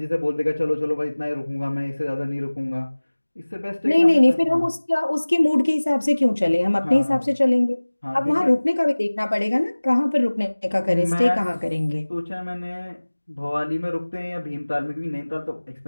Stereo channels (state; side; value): inverted; both; correlation -1.00